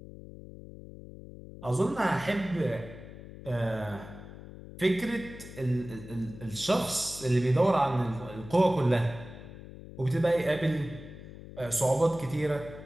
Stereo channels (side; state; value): left; noise; hum, 15 dB below the sound